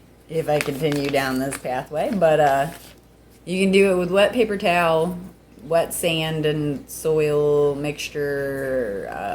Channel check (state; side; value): identical; both; correlation 1.00